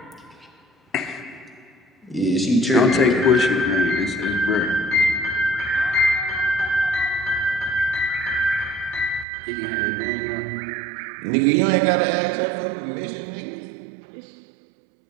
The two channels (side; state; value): left; drops out; at 9.2 s